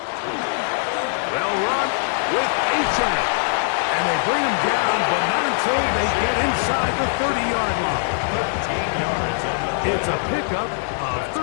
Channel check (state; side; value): silent; right; digital silence